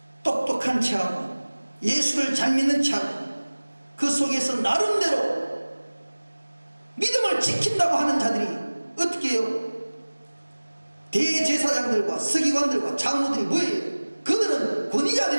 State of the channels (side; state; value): both; inverted; correlation -1.00